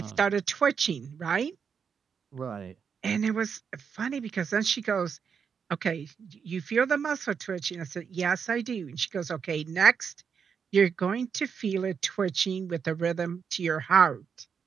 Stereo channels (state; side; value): quieter; left; 6.6 dB